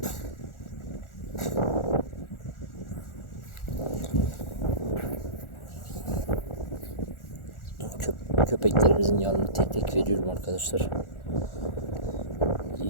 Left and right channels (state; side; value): late; right; 1.4 ms